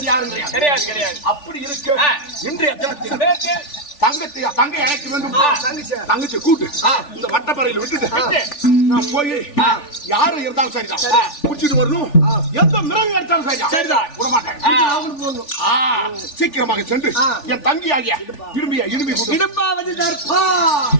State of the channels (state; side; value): late; right; 3.4 ms